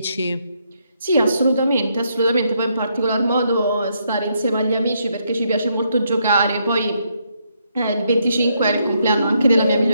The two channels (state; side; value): inverted; both; correlation -0.76